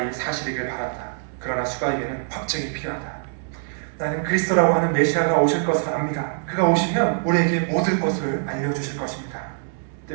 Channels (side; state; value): left; silent; digital silence